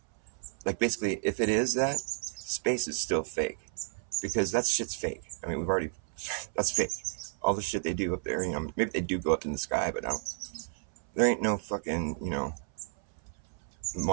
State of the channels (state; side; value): silent; left; 57 dB below the other